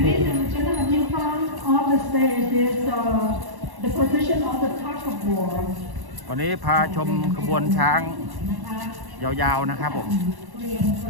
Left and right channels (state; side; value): late; left; 1.1 ms